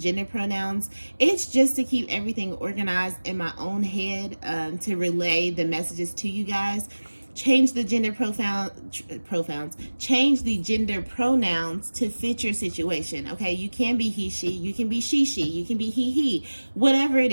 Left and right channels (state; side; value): inverted; both; correlation -1.00